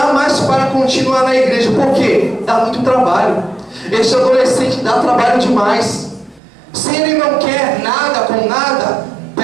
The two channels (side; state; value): left; drops out; at 6.4 s